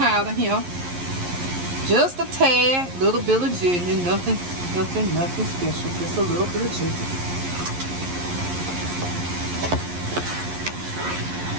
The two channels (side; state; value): left; late; 11 ms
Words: here. Just a tad, little bit of ginger, nothing special. Just a little bit of ginger.